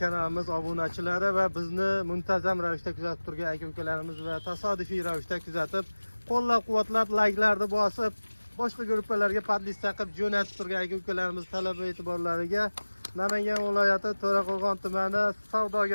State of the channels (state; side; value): inverted; both; correlation -1.00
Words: kanalimiz obunachilari va bizni muntazam ravishda kuzatib turgan aka-ukalarimiz va tasodifiy ravishda kuzatib, qo'llab-quvvatlab, layklarni bosib, boshqa gruppalarga podlist taqib jo'natib turgan aka-ukalarimiz talab va e'tiborlariga Namangan viloyati To'raqo'rg'on tumani